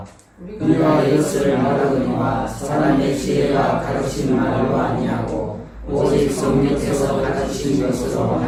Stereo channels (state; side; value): identical; both; correlation 1.00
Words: 우리가 이것을 말하거니와 사람의 지혜가 가르친 말로 아니하고 오직 성령께서 가르치신 것으로